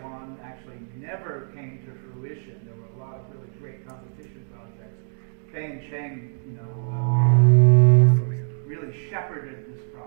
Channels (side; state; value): left; silent; 58 dB below the other